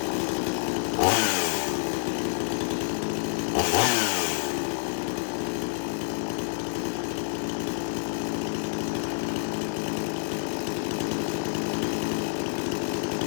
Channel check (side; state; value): right; silent; digital silence